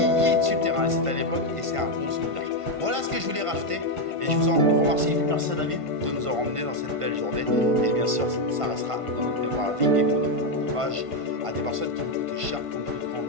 sur le terrain, c'était à l'époque et c'est un bon souvenir. Voilà ce que je voulais rajouter et je vous en remercie. Merci à David de nous avoir emmenés dans cette belle journée et bien sûr ça restera dans notre mémoire à vie et qu'on hommage à des personnes qui nous coûtaient cher comme notre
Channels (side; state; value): left; late; 1.5 ms